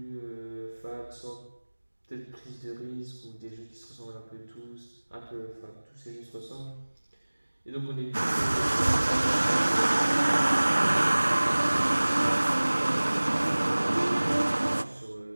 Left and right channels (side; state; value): both; inverted; correlation -1.00